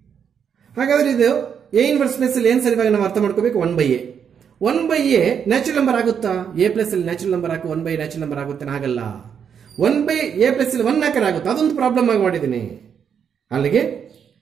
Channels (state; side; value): quieter; left; 7.6 dB